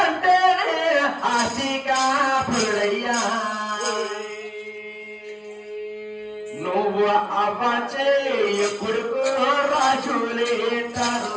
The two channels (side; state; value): both; identical; correlation 1.00